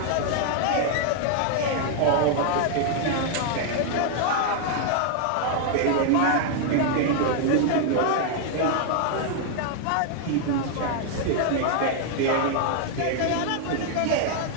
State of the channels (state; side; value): different; both; correlation 0.00